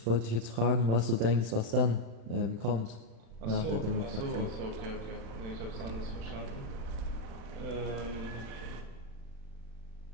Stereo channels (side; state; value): left; late; 35 ms